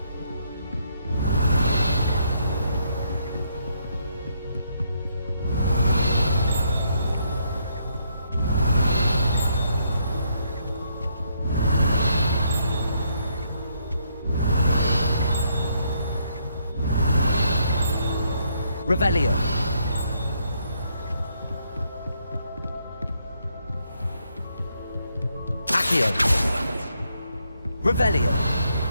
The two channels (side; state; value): both; inverted; correlation -0.74